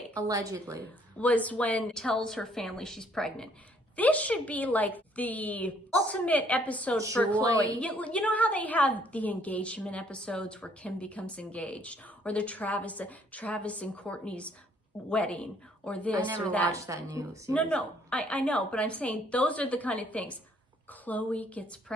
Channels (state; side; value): normal; both; correlation 0.64